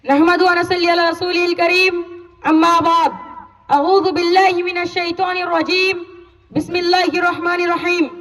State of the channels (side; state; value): both; identical; correlation 1.00